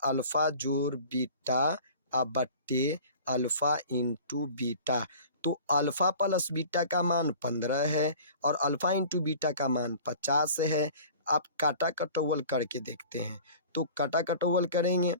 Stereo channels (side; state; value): both; inverted; correlation -0.43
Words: अल्फा जोड़ बीटा बट्टे अल्फा इंटू बीटा। तो अल्फा प्लस बीटा का मान 15 है और अल्फा इंटू बीटा का मान 50 है। आप काटा कटौवल करके देखते हैं, तो काटा कटौवल करेंगे